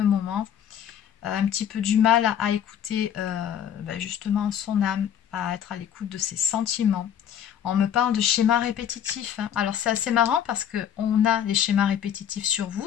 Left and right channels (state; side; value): quieter; right; 9.2 dB